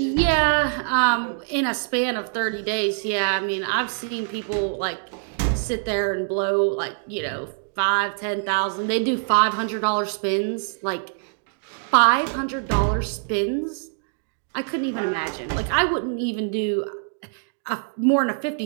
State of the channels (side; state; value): left; silent; digital silence